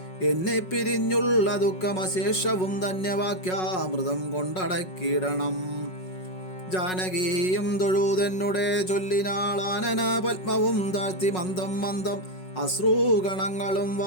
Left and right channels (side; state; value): right; late; 5.4 ms